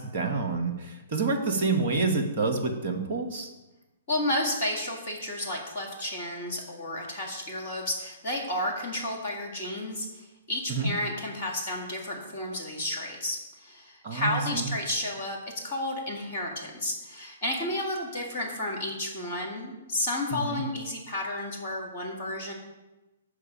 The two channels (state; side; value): inverted; both; correlation -0.42